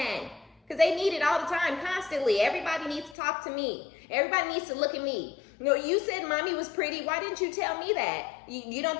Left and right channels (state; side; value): drops out; right; at 3.2 s